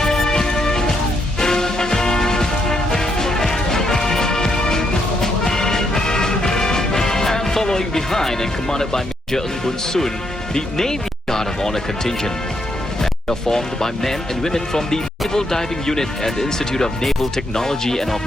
And following behind and commanded by Major Ng Bun Sun, the Navy Guard of Honor contingent. They are formed by men and women from the Naval Diving Unit and the Institute of Naval Technology and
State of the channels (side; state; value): both; normal; correlation 0.77